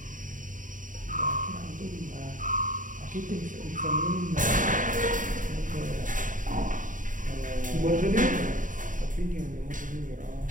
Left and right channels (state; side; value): late; left; 0.38 ms